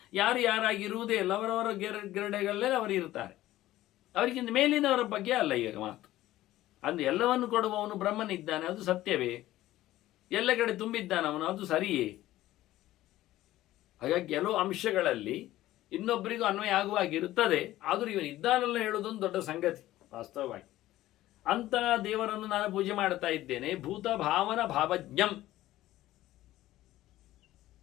ಯಾರು ಯಾರಾಗಿರುವುದೇ ಇಲ್ಲ, ಅವರವರ ಗಿರಡೆಗಳಲ್ಲೇ ಅವರು ಇರ್ತಾರೆ. ಅವರಿಗಿಂತ ಮೇಲಿನವರ ಬಗ್ಗೆ ಅಲ್ಲ ಈಗ ಮಾತು. ಅಂದು ಎಲ್ಲವನ್ನು ಕೊಡುವವನು ಬ್ರಹ್ಮನಿದ್ದಾನೆ, ಅದು ಸತ್ಯವೇ? ಎಲ್ಲ ಕಡೆ ತುಂಬಿದ್ದಾನವನು, ಅದು ಸರಿಯೇ? ಹಾಗಾಗಿ ಕೆಲವು ಅಂಶಗಳಲ್ಲಿ ಇನ್ನೊಬ್ಬರಿಗೂ ಅನ್ವಯ ಆಗುವಾಗಿರುತ್ತದೆ. ಆದರೂ ಇವನು ಇದ್ದಾನಲ್ಲ ಹೇಳುವುದೊಂದು ದೊಡ್ಡ ಸಂಗತಿ ವಾಸ್ತವವಾಗಿ. ಅಂತ ದೇವರನ್ನು ನಾನು ಪೂಜೆ ಮಾಡ್ತಾ ಇದ್ದೇನೆ. ಭೂತ ಭಾವನ ಭಾವಜ್ಞಂ,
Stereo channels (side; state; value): right; quieter; 15.3 dB